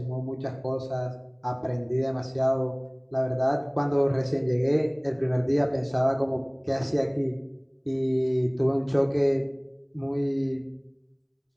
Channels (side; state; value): both; identical; correlation 1.00